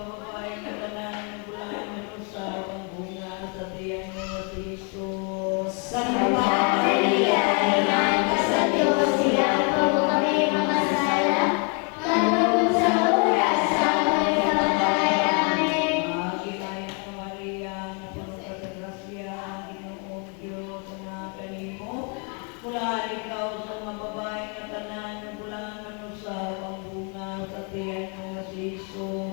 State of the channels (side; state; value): right; quieter; 36.4 dB